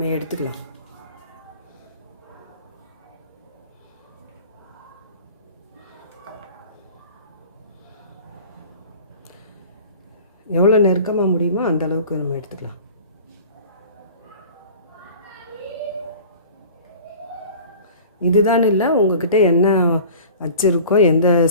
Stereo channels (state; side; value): inverted; both; correlation -0.43